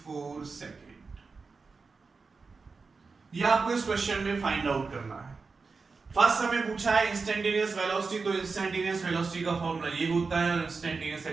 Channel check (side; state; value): left; quieter; 4.5 dB